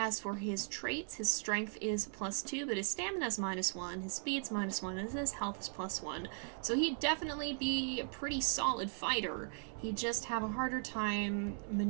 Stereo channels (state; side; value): silent; left; 52 dB below the other